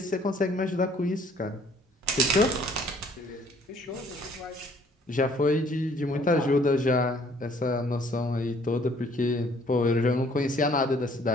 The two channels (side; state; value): both; normal; correlation 0.60